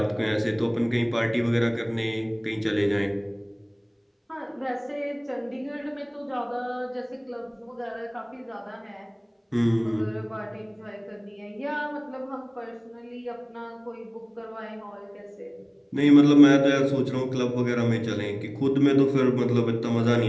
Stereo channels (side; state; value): both; identical; correlation 1.00